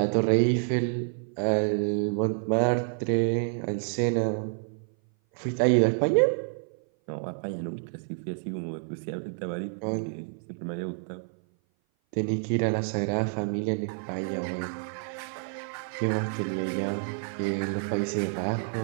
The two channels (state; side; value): silent; left; 57 dB below the other